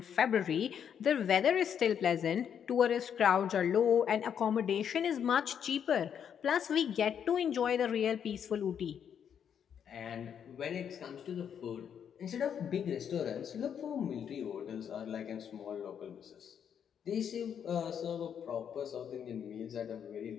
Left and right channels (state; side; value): quieter; right; 8.2 dB